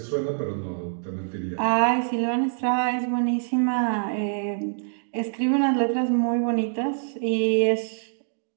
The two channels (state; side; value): silent; left; digital silence